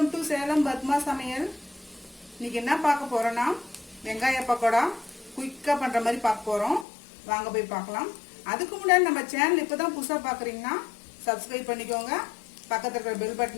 to Salem Padma சமையல். இன்னைக்கு என்ன பார்க்க போறோம்னா வெங்காய பக்கோடா குயிக்காக பண்ணுற மாதிரி பார்க்க போகிறோம். வாங்க போய் பார்க்கலாம். அதுக்கு முன்னாடி நம்ம சேனல் இப்போ தான் புதுசாக பார்க்குறீங்கன்னா சப்ஸ்கிரைப் பண்ணிக்கோங்க, பக்கத்தில் இருக்கிற பெல்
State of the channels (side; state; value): right; drops out; at 6.9 s